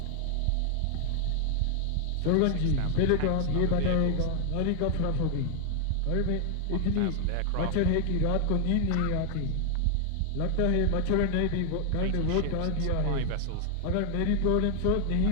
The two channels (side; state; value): both; different; correlation 0.00